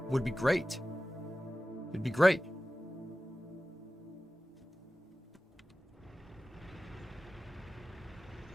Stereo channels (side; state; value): both; normal; correlation 0.96